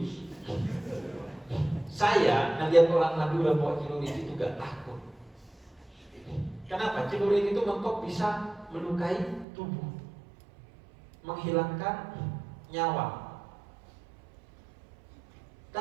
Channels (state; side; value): drops out; left; at 9.5 s